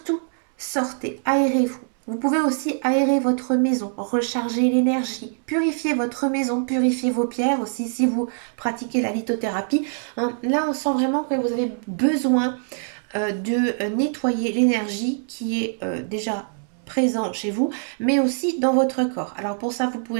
sortez, aérez-vous. Vous pouvez aussi aérer votre maison, recharger l'énergie, purifier votre maison, purifier vos pierres aussi si vous pratiquez la lithothérapie, hein. Là, on sent vraiment que vous avez besoin de nettoyer l'énergie qui est déjà présent chez vous, mais aussi dans votre corps. Alors pour ça, vous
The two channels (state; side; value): silent; left; 63 dB below the other